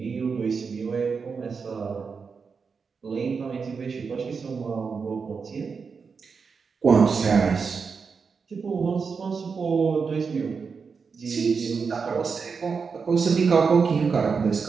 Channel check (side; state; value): left; quieter; 5.4 dB